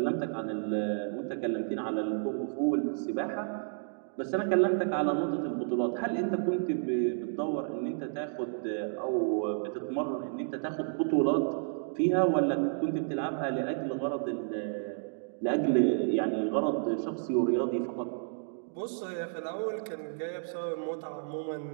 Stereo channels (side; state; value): left; silent; digital silence